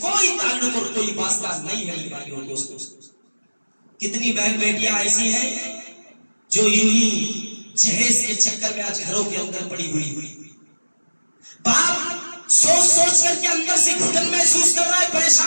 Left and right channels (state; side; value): inverted; both; correlation -1.00